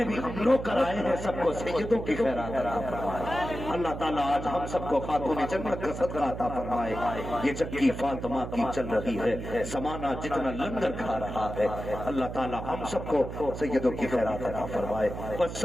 بھی ہم لوگ کرائے ہیں سب کو سیدوں کی خیرات عطا فرمائے. اللہ تعالیٰ آج ہم سب کو خاتون جنت کا صدقہ عطا فرمائے. یہ چکی فاطمہ کی چل رہی ہے، زمانہ جتنا لنگر کھا رہا ہے، اللہ تعالیٰ ہم سب کو سیدوں کی خیرات عطا فرمائے. بس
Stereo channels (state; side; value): noise; right; hum, 8 dB below the sound